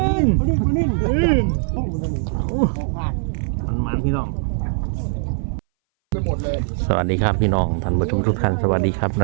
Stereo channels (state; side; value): silent; left; 61 dB below the other